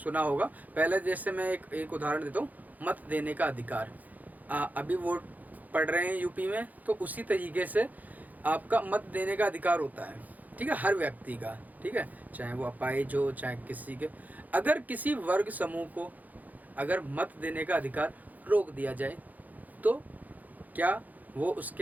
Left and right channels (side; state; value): left; late; 0.081 ms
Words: होगा। पहले जैसे मैं एक उदाहरण देता हूँ, मत देने का अधिकार। अभी वोट पड़ रहे हैं यूपी में, तो उसी तरीके से आपका मत देने का अधिकार होता है, ठीक है, हर व्यक्ति का, ठीक है, चाहे वो अपाहिज हो चाहे किसी के। अगर किसी वर्ग समूह को अगर मत देने का अधिकार रोक दिया जाए तो क्या वो